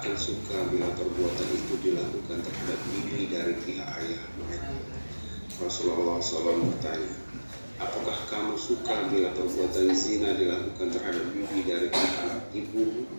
suka bila perbuatan itu dilakukan terhadap bibi dari pihak ayah mereka. Rasulullah SAW bertanya, apakah kamu suka bila perbuatan zina dilakukan terhadap bibi dari pihak ibu?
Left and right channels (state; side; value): inverted; both; correlation -1.00